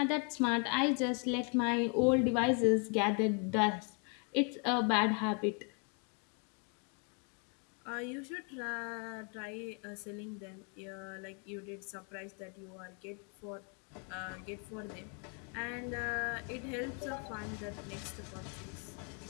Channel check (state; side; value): quieter; right; 38.5 dB